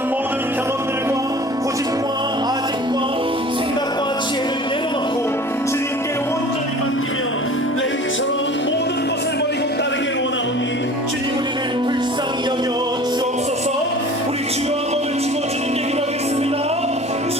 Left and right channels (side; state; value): both; normal; correlation 0.43